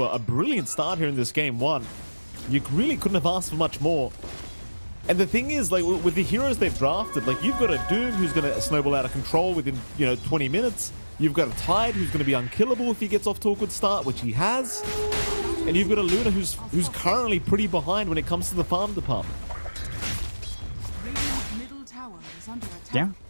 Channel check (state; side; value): inverted; both; correlation -1.00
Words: a brilliant start here in this game one. You really couldn't have asked for much more. And the thing is, like, with the heroes they've drafted, like, you've got a Doom who's going to snowball out of control within, 20 minutes. You've got a Tide who's going to be unkillable if he gets off to a good start, which he has. And you've got a Luna who's currently pretty behind when it comes to the farm department. Yeah,